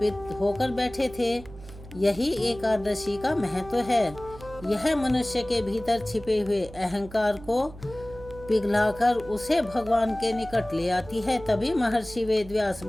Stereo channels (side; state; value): right; noise; hum, 17 dB below the sound